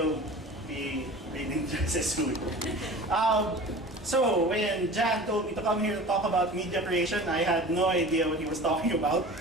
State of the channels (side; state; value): both; normal; correlation 0.39